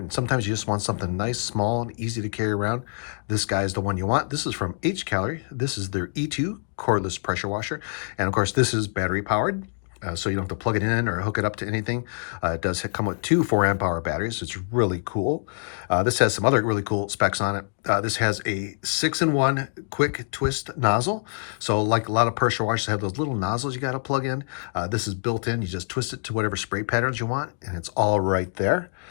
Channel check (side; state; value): right; silent; digital silence